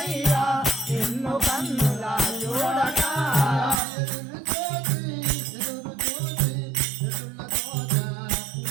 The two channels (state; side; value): drops out; left; at 3.8 s